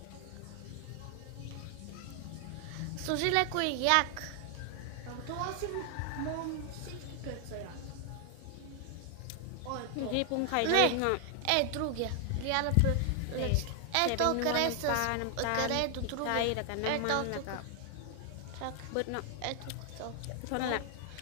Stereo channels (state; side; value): different; both; correlation 0.00